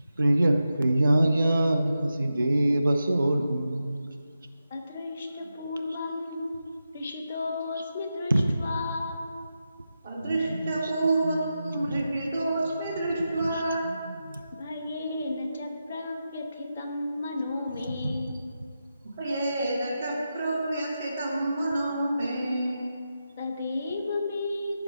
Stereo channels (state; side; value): inverted; both; correlation -0.89